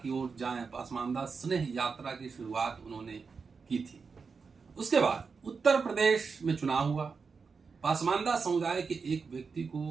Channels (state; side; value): quieter; left; 5.1 dB